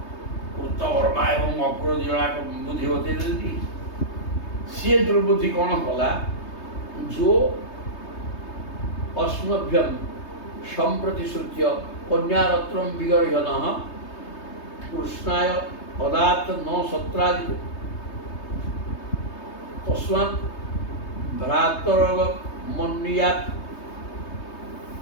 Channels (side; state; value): right; late; 3.2 ms